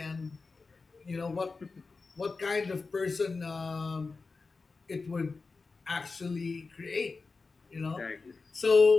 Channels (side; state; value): right; quieter; 4.2 dB